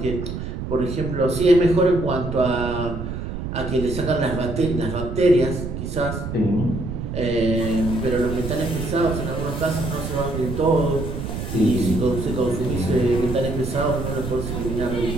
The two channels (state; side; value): noise; right; rumble, 5 dB below the sound